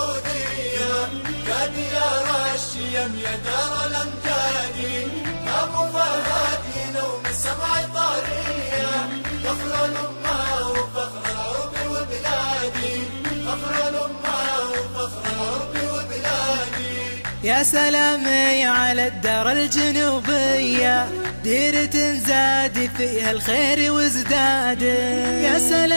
يا ديار الشيم يا دار الأمجاد، أبو فهد ينوم السمع طارية، فخر الأمة وفخر العرب وبلادي، فخر الأمة وفخر العرب وبلادي. يا سلامي على الدار الجنوبية، ديرة زاد فيها الخير وازداد. يا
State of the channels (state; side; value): inverted; both; correlation -1.00